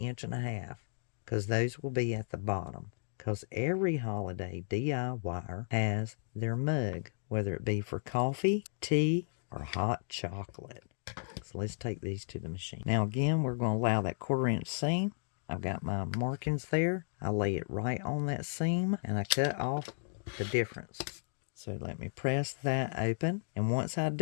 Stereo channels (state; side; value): silent; right; digital silence